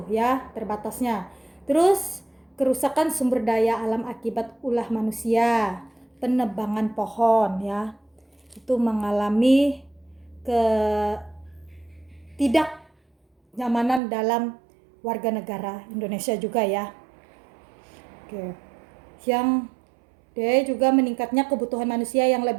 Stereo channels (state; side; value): drops out; left; at 14.0 s